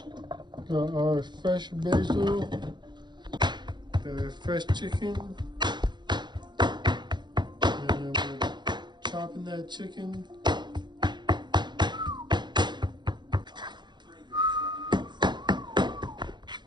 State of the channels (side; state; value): left; late; 0.21 ms